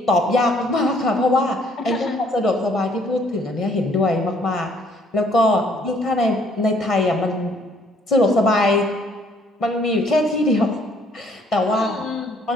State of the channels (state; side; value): normal; both; correlation 0.63